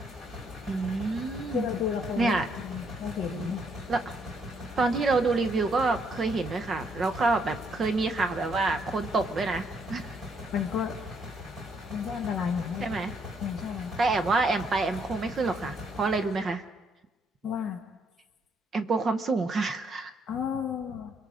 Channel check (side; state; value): both; normal; correlation 0.71